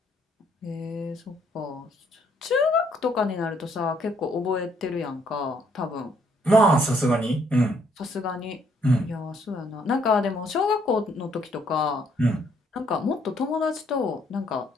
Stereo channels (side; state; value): both; normal; correlation 0.68